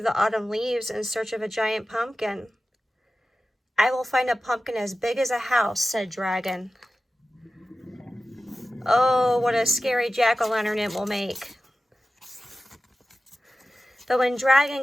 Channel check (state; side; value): normal; both; correlation 0.94